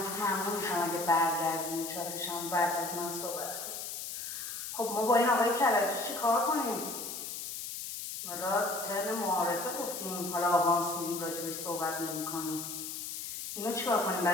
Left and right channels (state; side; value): noise; left; hiss, 6 dB below the sound